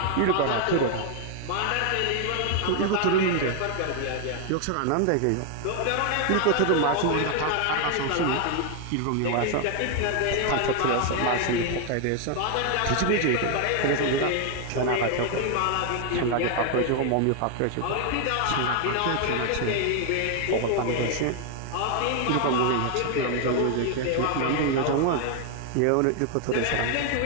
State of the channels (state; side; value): different; both; correlation 0.00